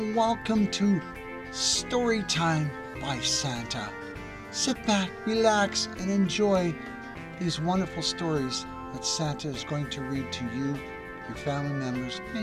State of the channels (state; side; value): identical; both; correlation 1.00